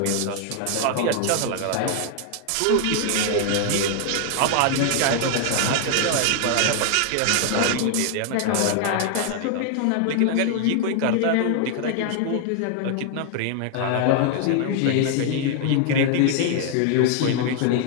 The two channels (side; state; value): both; different; correlation 0.00